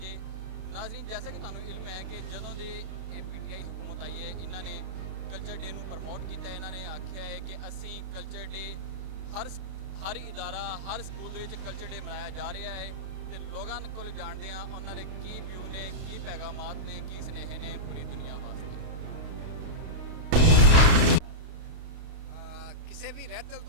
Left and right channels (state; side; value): late; left; 32 ms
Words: ਹੈ। ਨਾਜ਼ਰੀਨ, ਜੈਸਾ ਕਿ ਤੁਹਾਨੂੰ ਇਲਮ ਹੈ ਕਿ ਜਦੋਂ ਦੇ ਇਹ ਪੀਟੀਆਈ ਹਕੂਮਤ ਆਈ ਹੈ, ਇਹਨਾਂ ਨੇ ਕਲਚਰ ਡੇ ਨੂੰ ਪ੍ਰਮੋਟ ਕੀਤਾ। ਇਹਨਾਂ ਨੇ ਆਖਿਆ ਹੈ ਕਿ ਅਸੀਂ ਕਲਚਰ ਡੇ ਹਰ ਇਦਾਰਾ ਹਰ ਸਕੂਲ ਦੇ ਵਿੱਚ ਕਲਚਰ ਡੇ ਮਨਾਇਆ ਜਾ ਰਿਹਾ ਹੈ ਤੇ ਲੋਕਾਂ ਕੋਲ ਜਾਣਦੇ ਹਾਂ ਉਹਨਾਂ ਦੇ ਕੀ ਵਿਊ ਨੇ, ਕੀ ਪੈਗਾਮਾਤ ਨੇ, ਕੀ ਸੁਨੇਹੇ ਨੇ ਪੂਰੀ ਦੁਨੀਆ ਵਾਸਤੇ। ਕਿਸੇ ਵੀ ਰਹਿਤਲ